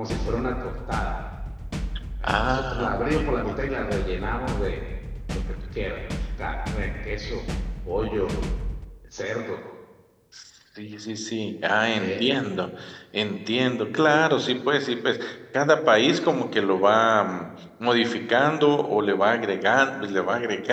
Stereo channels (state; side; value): identical; both; correlation 1.00